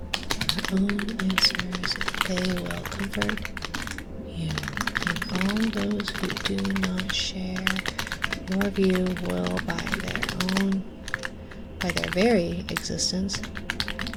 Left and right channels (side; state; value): both; identical; correlation 1.00